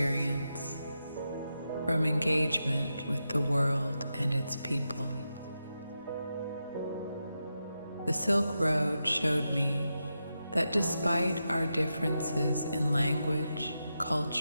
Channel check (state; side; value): inverted; both; correlation -0.88